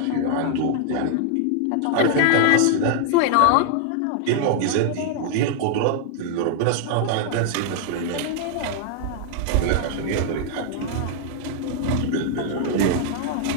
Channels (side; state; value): both; different; correlation 0.00